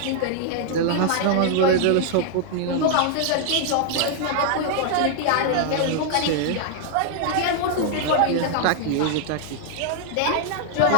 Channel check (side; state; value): both; different; correlation 0.00